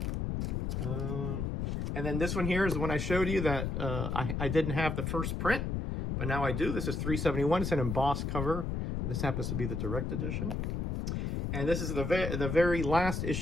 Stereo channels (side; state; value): left; noise; rumble, 1 dB below the sound